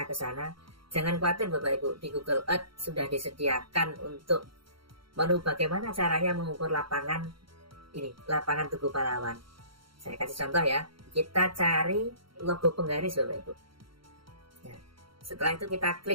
ke sana. Jangan khawatir Bapak Ibu, di Google Earth sudah disediakan untuk menu bagaimana caranya mengukur lapangan ini, lapangan Tugu Pahlawan. Saya kasih contoh ya. Kita cari logo penggaris Bapak Ibu. Nah, setelah itu kita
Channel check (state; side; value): late; left; 0.74 ms